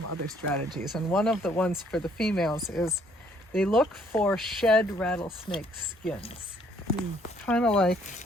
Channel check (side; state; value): both; normal; correlation 0.64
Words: other strategies, and one of the ones for the females is they look for shed rattlesnake skins, kind of like